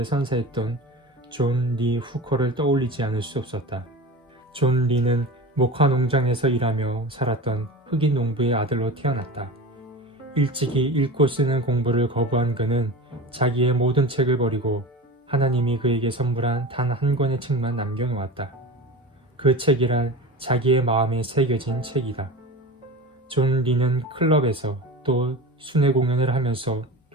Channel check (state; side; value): normal; both; correlation 0.31